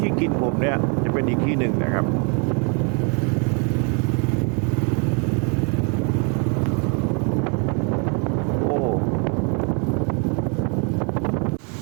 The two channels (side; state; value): left; quieter; 37.0 dB